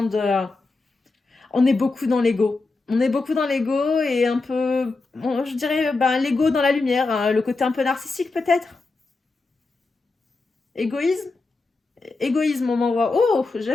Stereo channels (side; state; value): right; quieter; 3.6 dB